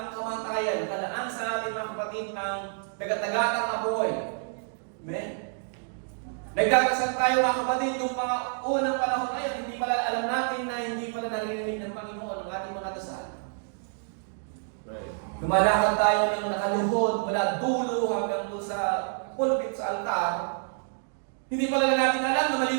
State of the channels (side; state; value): left; silent; 59 dB below the other